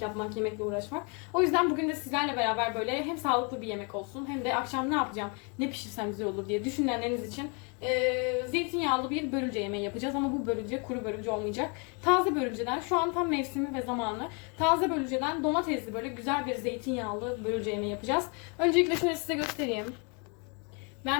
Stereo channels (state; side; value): quieter; right; 34.3 dB